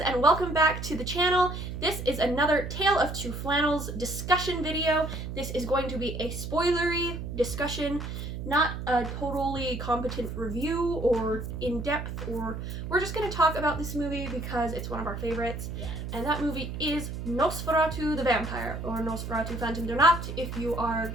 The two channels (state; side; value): noise; right; hum, 6 dB below the sound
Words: and welcome back to the channel. This is another Tale of Two Flannels discussion video. This is going to be a spoilery discussion, not a totally competent review or in-depth, or we're just going to talk about this movie because it's one of our favorites. Yes. And that movie is Nosferatu the Vampire, or Nosferatu Phantom der Nacht if you are